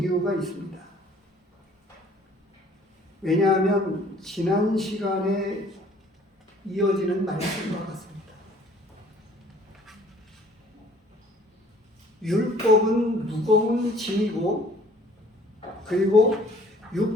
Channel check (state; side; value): normal; both; correlation 0.55